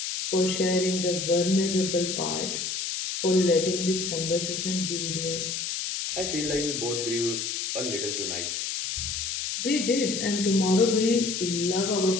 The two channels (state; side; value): noise; left; hiss, 3 dB below the sound